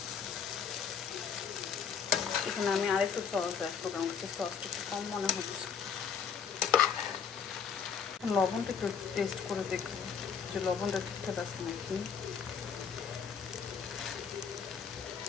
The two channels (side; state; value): right; quieter; 6.8 dB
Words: এখানে আমি আরেকটু সস অ্যাড করবো, আমার কাছে সসটা একটু কম মনে হচ্ছে। লবণটা একটু টেস্ট করে দেখবো যে লবণটা ঠিকঠাক আছে নাকি।